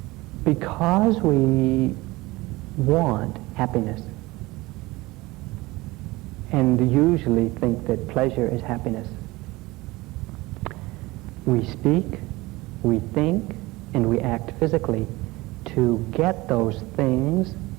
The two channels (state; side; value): quieter; left; 20.9 dB